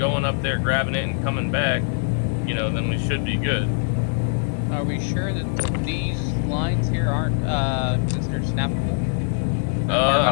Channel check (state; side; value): silent; right; digital silence